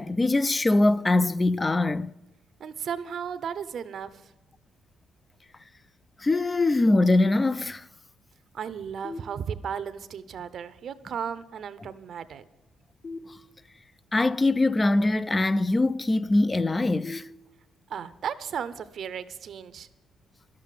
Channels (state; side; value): normal; both; correlation 0.95